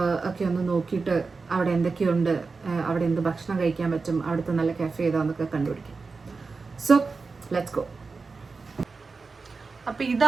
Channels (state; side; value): quieter; left; 4.3 dB